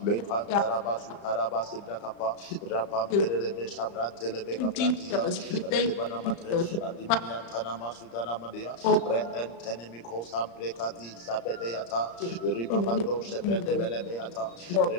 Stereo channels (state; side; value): late; right; 34 ms